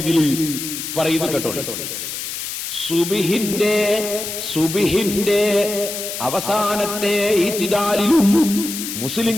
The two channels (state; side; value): noise; left; hiss, 6 dB below the sound